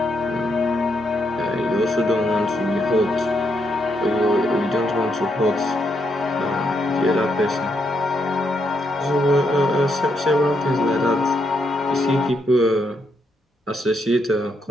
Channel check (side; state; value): both; normal; correlation 0.78